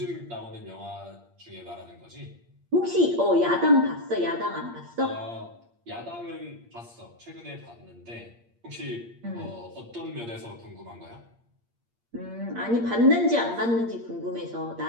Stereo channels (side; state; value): left; late; 8.6 ms